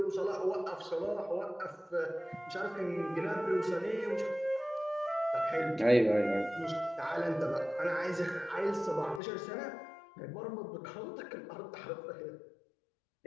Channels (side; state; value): right; drops out; at 9.2 s